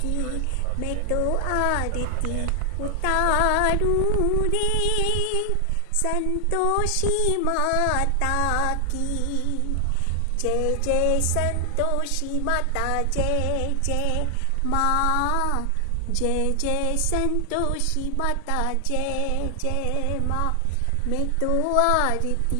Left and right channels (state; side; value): different; both; correlation 0.00